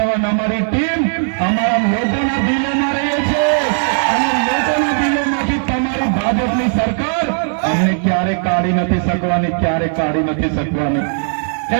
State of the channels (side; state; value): left; silent; 56 dB below the other